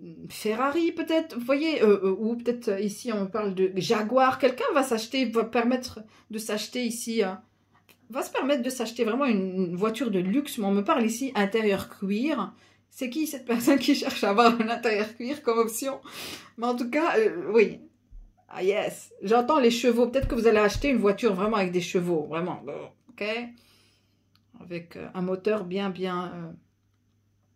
Ferrari peut-être, vous voyez, ou peut-être ici on me parle de Jaguar. Quelqu'un va permettre de s'acheter ici... va se permettre de s'acheter vraiment une voiture de luxe, mais on me parle ici intérieur cuir. C'est qui cette personne qui cherche à avoir un intérieur cuir comme option? Mais en tout cas, oui. Ah yes, j'entends les chevaux. Peut-être que vous allez acheter une voiture vraiment avec des chevaux, vraiment, ok? Avec un moteur bien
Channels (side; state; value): both; identical; correlation 1.00